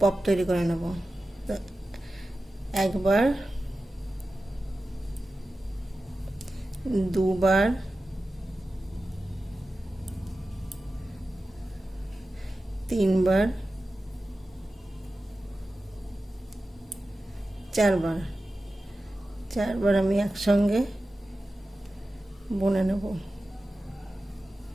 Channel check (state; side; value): normal; both; correlation 0.94